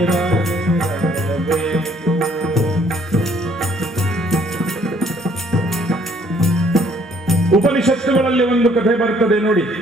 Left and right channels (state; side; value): normal; both; correlation 0.63